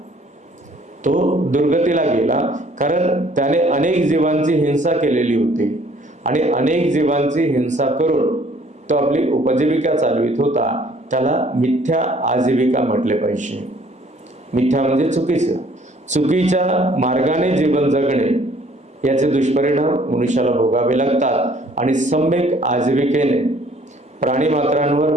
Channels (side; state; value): both; normal; correlation 0.58